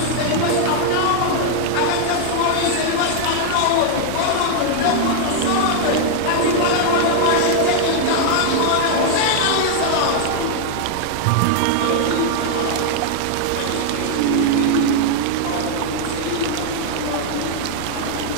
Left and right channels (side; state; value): both; different; correlation 0.00